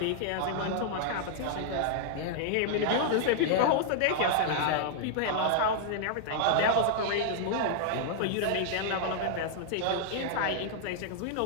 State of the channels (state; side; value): different; both; correlation -0.01